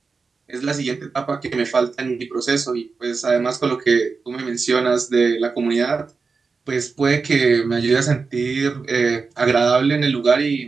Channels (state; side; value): quieter; left; 4.6 dB